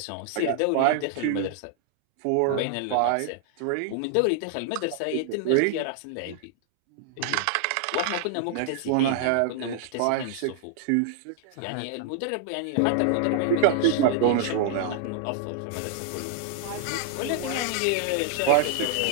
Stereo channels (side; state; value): both; different; correlation -0.01